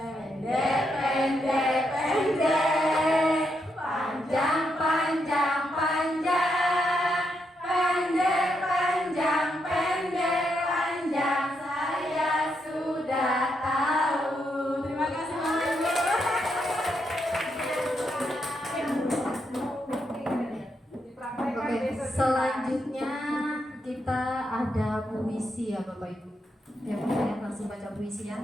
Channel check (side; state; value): both; normal; correlation 0.80